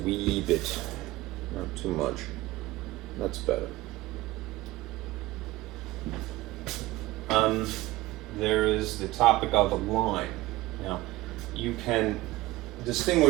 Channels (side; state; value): left; quieter; 18.3 dB